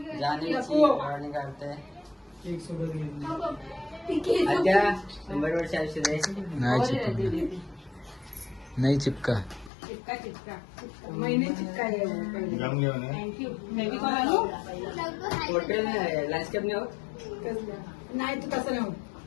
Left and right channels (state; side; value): drops out; right; at 9.7 s